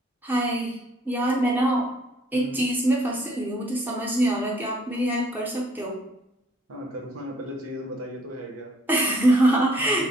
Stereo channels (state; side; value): normal; both; correlation 0.63